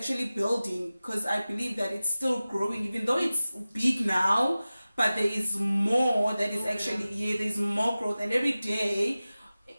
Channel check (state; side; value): inverted; both; correlation -0.96